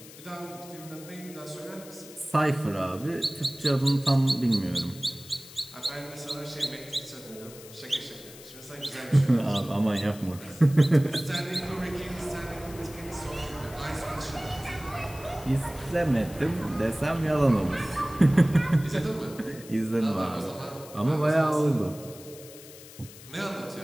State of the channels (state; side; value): noise; left; hiss, 18 dB below the sound